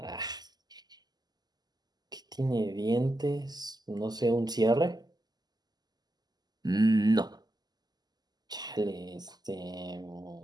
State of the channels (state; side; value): late; left; 0.20 ms